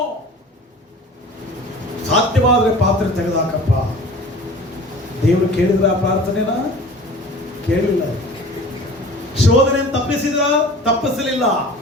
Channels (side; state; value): both; normal; correlation 0.42